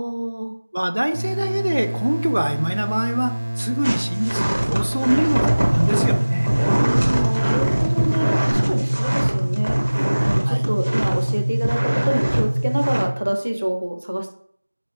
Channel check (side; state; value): both; inverted; correlation -1.00